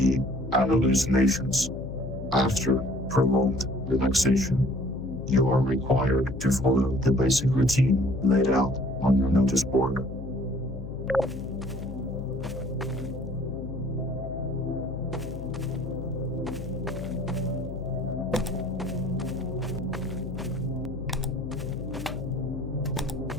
and hallucinations after prolonged relaxation, you are required to follow the basic routine laid out on your notice board.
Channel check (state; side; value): noise; left; hum, 9 dB below the sound